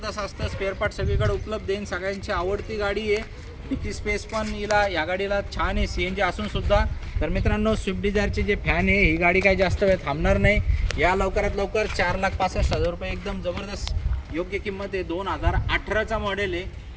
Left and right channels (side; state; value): both; identical; correlation 1.00